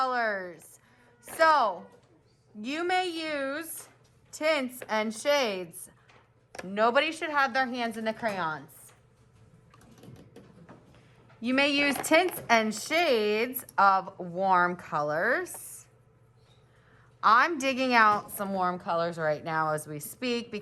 So you may use tints and shades. Nobody should have their hands in the crayons. You may use tints and shades of warm colors. I'm digging out some warm colors right now as we speak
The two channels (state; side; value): identical; both; correlation 1.00